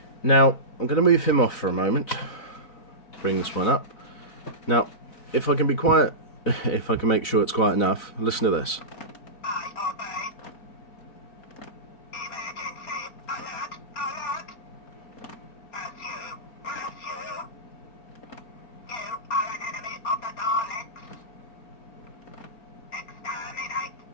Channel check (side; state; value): right; late; 4.0 ms